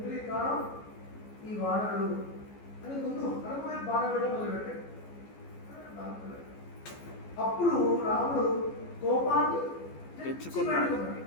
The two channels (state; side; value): late; right; 14 ms